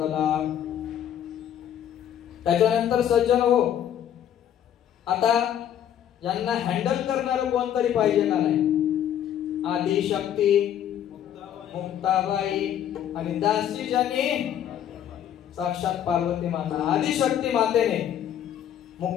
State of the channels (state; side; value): quieter; right; 10.2 dB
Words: त्याच्यानंतर सज्जन हो, आता यांना हँडल करणार कोणतरी पाहिजे का नाही? आदिशक्ती मुक्ताबाई आणि दासी ज्यांनी साक्षात पार्वती माता. आदिशक्ती मातेने